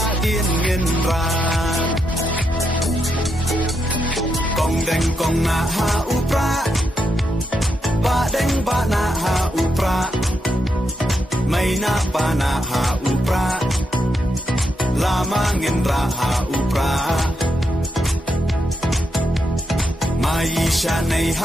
dien ngin ran Kong deng kong na ha u Prah Ba deng ba na ha u Prah May na pa na ha u Prah Lama ngin ra ha u Prah Mai sha nei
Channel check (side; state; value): both; normal; correlation 0.82